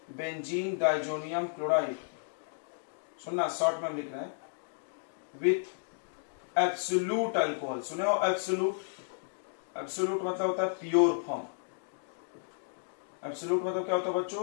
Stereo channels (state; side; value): silent; right; digital silence